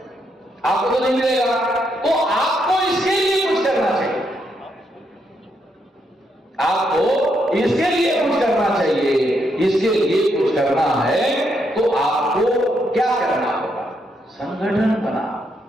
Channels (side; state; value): both; normal; correlation 0.78